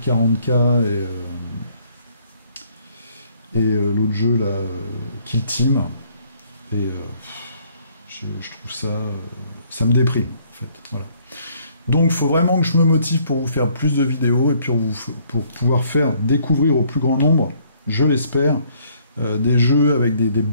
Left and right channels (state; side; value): inverted; both; correlation -0.64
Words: 40K et l'autre jeu là, Kill Team. Et je trouve ça me déprime en fait. Voilà. Donc il faut vraiment que je me motive pour vous faire plus de vidéos et puis pour pouvoir faire découvrir au plus grand nombre, je l'espère, des jeux avec des